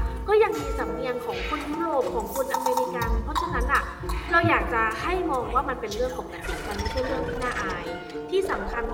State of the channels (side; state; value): both; identical; correlation 1.00